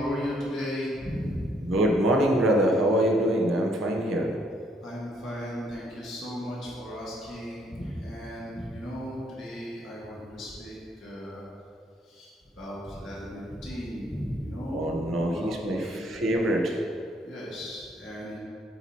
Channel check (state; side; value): normal; both; correlation 0.68